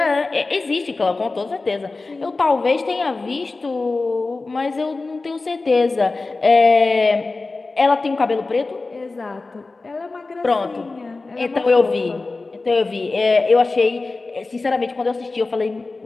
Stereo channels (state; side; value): quieter; right; 3.6 dB